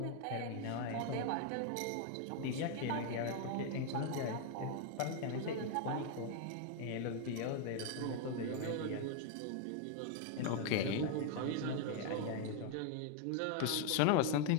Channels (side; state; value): both; different; correlation 0.00